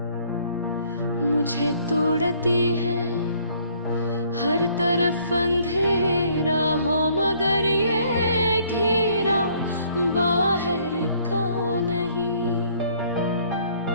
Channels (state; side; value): inverted; both; correlation -0.62